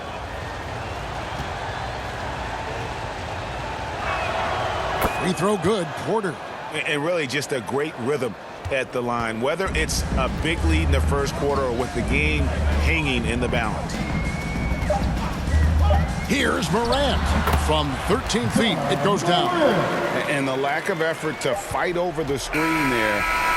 Free throw good, Porter. And really just a great rhythm at the line, whether it's a big lead in the first quarter or with the game hanging in the balance. Here's Morant. From 13 feet, it goes down. And the lack of effort to fight over the screen there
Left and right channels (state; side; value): identical; both; correlation 1.00